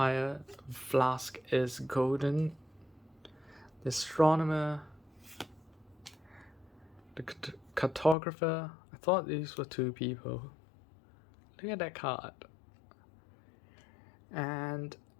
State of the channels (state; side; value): drops out; right; at 8.2 s